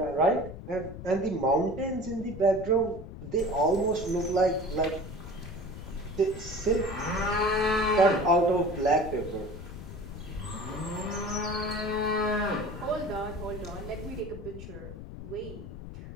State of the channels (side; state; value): left; noise; rumble, 11 dB below the sound